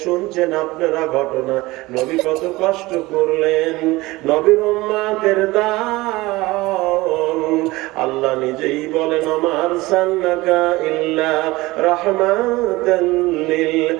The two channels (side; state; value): left; quieter; 20.3 dB